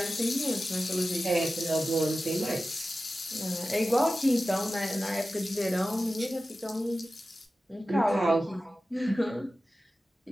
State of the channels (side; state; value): both; normal; correlation 0.94